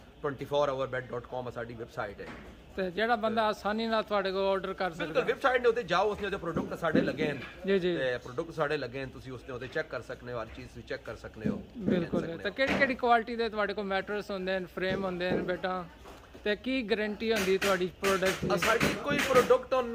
24hourbed.com साडी वेबसाइट है ਤੇ ਜਿਹੜਾ ਬੰਦਾ ਆਸਾਨੀ ਨਾਲ ਤੁਹਾਡੇ ਕੋਲ ਆਰਡਰ ਕਰ ਸਕਦਾ ਬਿਲਕੁਲ ਵੈਬਸਾਈਟ ਦੇ ਉੱਤੇ ਜਾਓ ਉਸਨੇ ਉਹਦੇ ਪ੍ਰੋਡਕਟ ਸਾਡੇ ਲੱਗੇ ਹਨ ਜੀ ਜੀ ਤੇ ਪ੍ਰੋਡਕਟ ਸਾਡੇ ਲੱਗੇ ਹਨ ਤੁਸੀਂ ਉਸਨੇ ਉਹਦੇ ਚੈੱਕ ਕਰ ਸਕਦੇ ਹੋ ਹਰ ਚੀਜ਼ ਵੀ ਚੈੱਕ ਕਰ ਸਕਦੇ ਹੋ ਬਿਲਕੁਲ ਤੇ ਕਿਹੜੀ ਕੁਆਲਿਟੀ ਦੇ ਤੁਹਾਡੇ ਕੋਲ ਮੈਟਰਸ ਹੁੰਦੇ ਨੇ ਫਰੇਮ ਹੁੰਦੇ ਨੇ ਬੇਟਾ ਤੇ ਕੀ ਗਾਰੰਟੀ ਹੁੰਦੀ ਤੁਹਾਡੀ ਪ੍ਰੋਡਕਟ ਦੀ ਸਾਡੀ ਕੋਈ ਪ੍ਰੋਡਕਟ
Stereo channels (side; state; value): both; identical; correlation 1.00